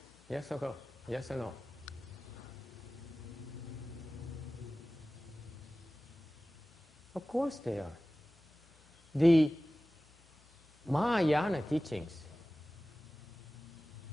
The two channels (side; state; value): both; normal; correlation 0.96